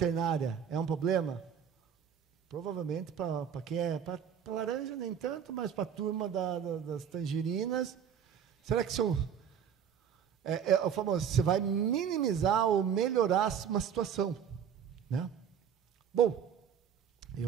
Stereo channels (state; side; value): quieter; left; 8.1 dB